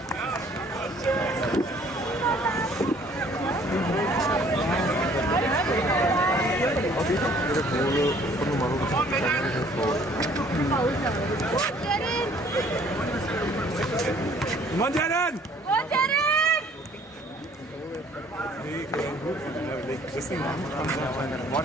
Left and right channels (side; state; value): both; normal; correlation 0.58